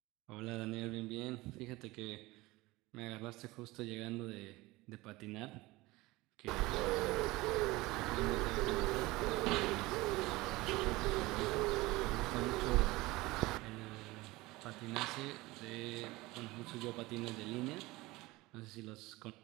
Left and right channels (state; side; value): quieter; left; 20.7 dB